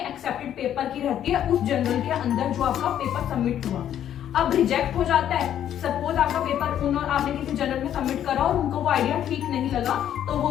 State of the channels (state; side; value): quieter; right; 10.4 dB